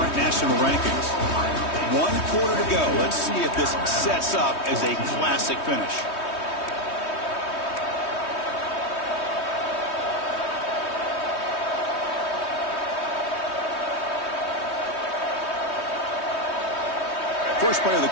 national rankings. 1 quarter to go. Let's see if this sets up as a classic finish. First play of the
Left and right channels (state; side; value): late; right; 3.2 ms